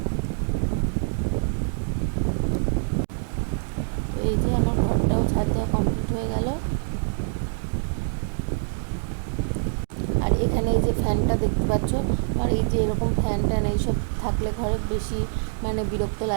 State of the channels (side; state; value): left; silent; digital silence